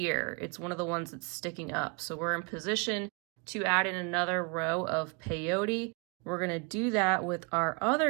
It's one of the ones that's sticking up. So we're in position to add in another row of peyote. We're going to do that with our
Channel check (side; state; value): left; quieter; 32.7 dB